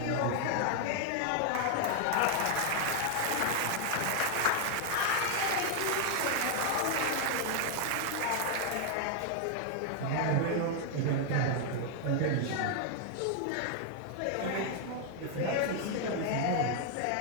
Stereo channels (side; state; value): both; different; correlation 0.00